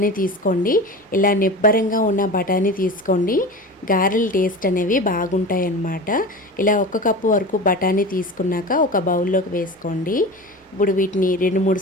తీసుకోండి. ఇలా నిబ్బరంగా ఉన్న బఠానీ తీసుకోండి. గారెల టేస్ట్ అనేవి బాగుంటాయి అన్నమాట. ఇలా ఒక కప్పు వరకు బఠానీ తీసుకున్నాక ఒక బౌల్లోకి వేసుకోండి. ఇప్పుడు వీటిని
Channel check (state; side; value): normal; both; correlation 0.31